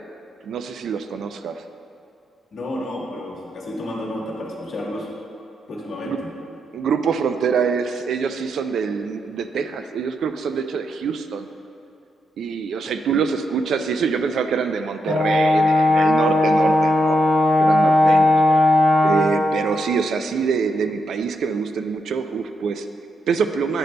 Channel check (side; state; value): both; normal; correlation 0.82